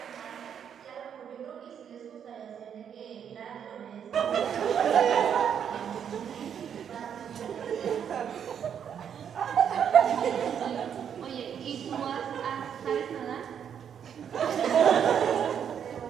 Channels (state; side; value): quieter; left; 8.3 dB